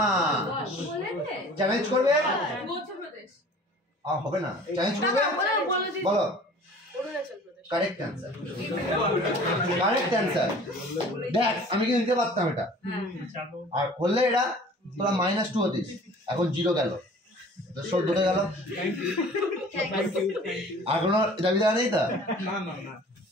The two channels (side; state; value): both; normal; correlation 0.47